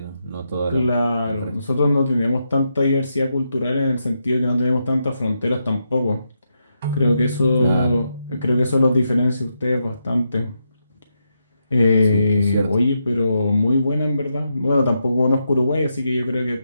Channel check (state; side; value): inverted; both; correlation -0.83